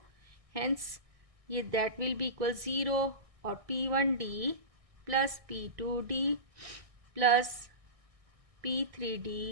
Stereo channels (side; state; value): left; late; 1.6 ms